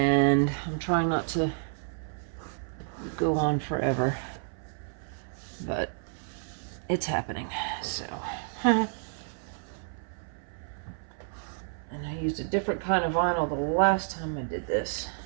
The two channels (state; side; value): silent; left; 58 dB below the other